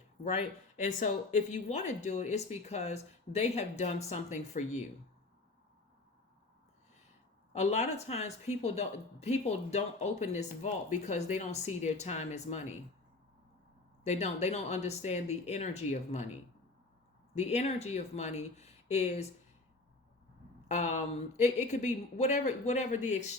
right? And so if you want to do it, it's because they have done something for you. A lot of times people don't open this vault because they don't see their time as money. They don't understand the energy of money. The energy of money is it could be whatever the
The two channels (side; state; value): right; quieter; 3.2 dB